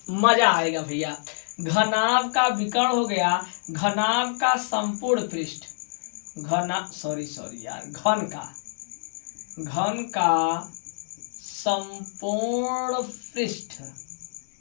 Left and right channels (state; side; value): silent; right; digital silence